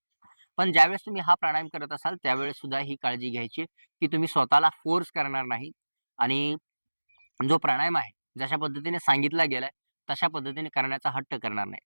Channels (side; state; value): both; inverted; correlation -1.00